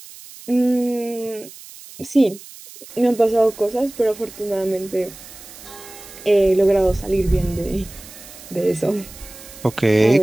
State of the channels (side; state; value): right; noise; hiss, 18 dB below the sound